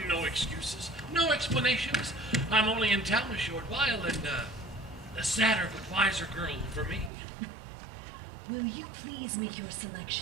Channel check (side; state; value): left; drops out; at 7.1 s